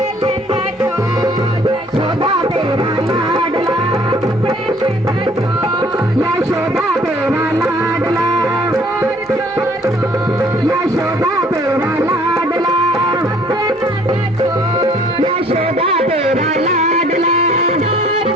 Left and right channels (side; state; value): both; normal; correlation 0.58